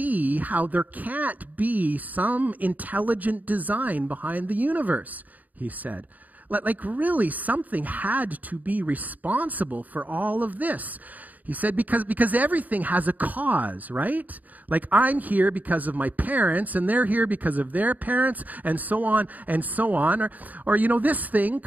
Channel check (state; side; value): late; left; 0.078 ms